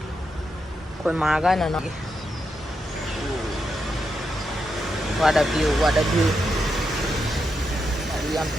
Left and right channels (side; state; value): both; normal; correlation 0.84